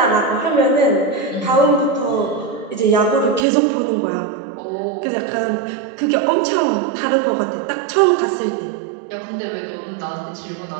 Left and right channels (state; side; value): drops out; left; at 3.5 s